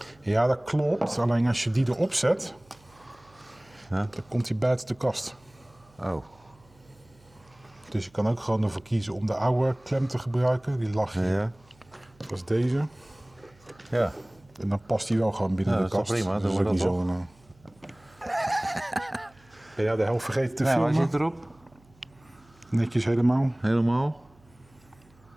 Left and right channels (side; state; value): right; noise; hum, 29 dB below the sound